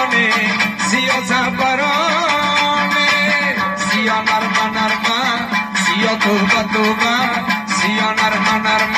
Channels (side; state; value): both; identical; correlation 1.00